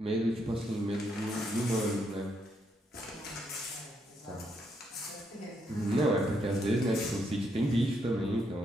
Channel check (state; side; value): normal; both; correlation 0.77